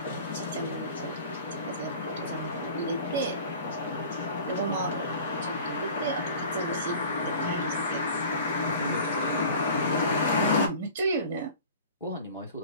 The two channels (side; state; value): both; inverted; correlation -0.42